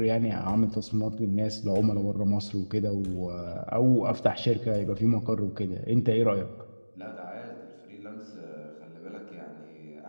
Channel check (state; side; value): inverted; both; correlation -1.00